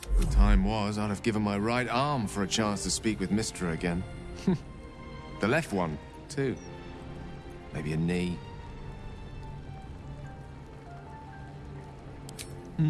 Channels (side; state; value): both; identical; correlation 1.00